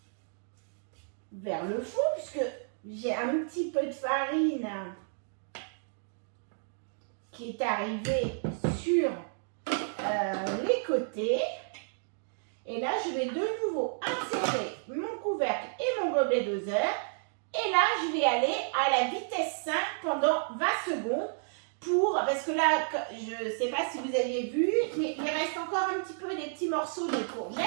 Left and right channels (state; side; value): silent; left; digital silence